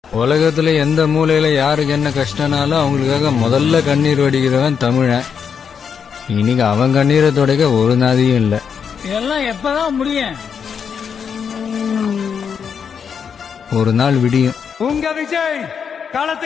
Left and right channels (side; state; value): right; quieter; 6.9 dB